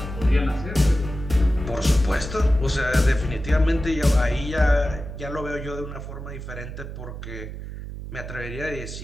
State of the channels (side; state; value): right; noise; hum, 9 dB below the sound